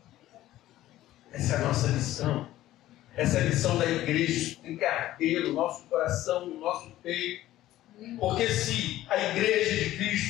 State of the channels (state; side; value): quieter; right; 14.6 dB